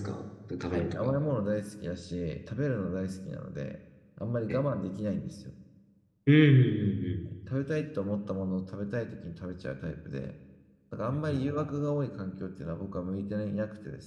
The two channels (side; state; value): both; identical; correlation 1.00